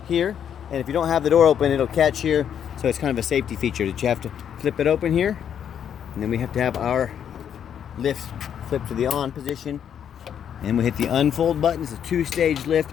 here. And if you don't have the door open, it'll catch here. So it's kind of a safety feature that you have to flip it open here. And then we have to have our lift flip to the on position. And we hit the unfold button. It's a two-stage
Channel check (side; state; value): right; quieter; 8.8 dB